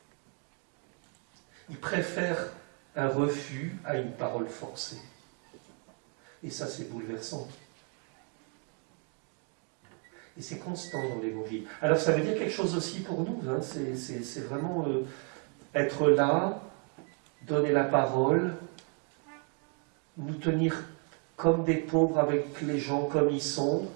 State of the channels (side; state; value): left; quieter; 39.5 dB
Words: Il préfère un refus à une parole forcée. Et ça, c'est bouleversant. Et c'est constant dans l'Évangile. Alors, ça veut dire quelque chose aussi pour nous. Hein. C'est vraiment être là, donner la parole, nous tenir comme des pauvres avec les gens comme ils sont,